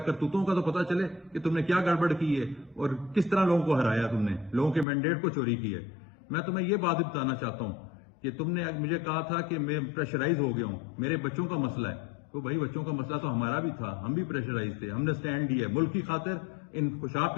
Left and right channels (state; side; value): drops out; right; at 4.9 s